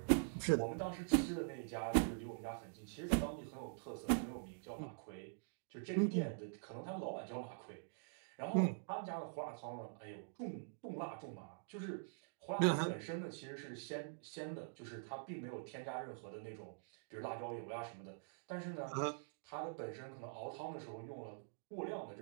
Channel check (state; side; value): silent; left; digital silence